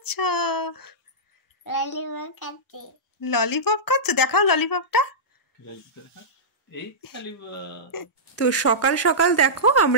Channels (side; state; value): both; normal; correlation -0.15